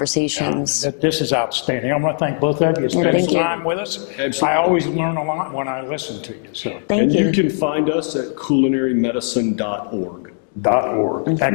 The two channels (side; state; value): right; silent; 59 dB below the other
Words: This is outstanding. I want to thank both of you. Spend some time with us. Absolutely. I always learn a lot when I listen to you. So. Thank you. You can find us at culinarymedicine.org. .org.